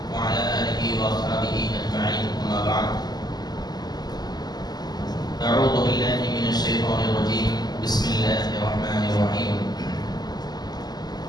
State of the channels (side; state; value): right; late; 0.20 ms